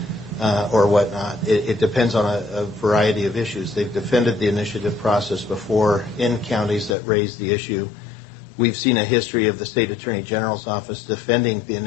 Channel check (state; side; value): drops out; right; at 7.0 s